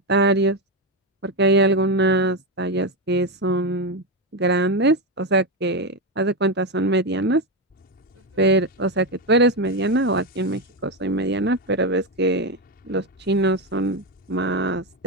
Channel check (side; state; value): both; normal; correlation 0.10